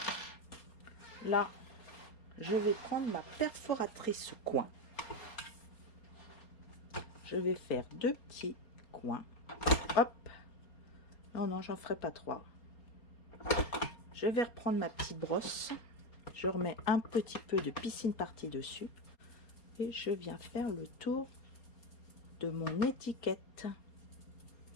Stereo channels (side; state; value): right; late; 4.3 ms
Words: Là, je vais prendre ma perforatrice coin. Je vais faire deux petits coins. Hop. Non, non, j'en ferai pas trois. Je vais reprendre ma petite brosse. Je remets un petit peu de piscine partie dessus. Et je viens faire le tour de mon étiquette.